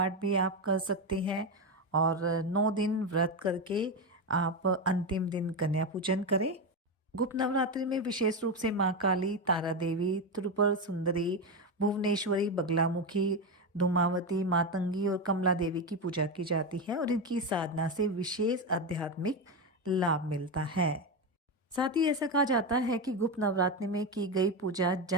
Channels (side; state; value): both; normal; correlation 0.13